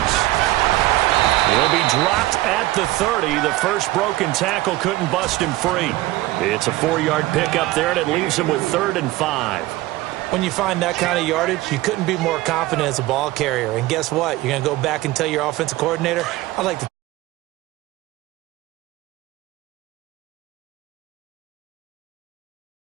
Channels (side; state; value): left; quieter; 17.7 dB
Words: He'll be dropped at the 30. The first broken tackle couldn't bust him free. It's a 4-yard pickup there, and it leaves him with 3rd and 5. When you find that kind of yardage, you couldn't be more confident as a ball carrier. And guess what? You're going to go back and tell your offensive coordinator, I'd like to.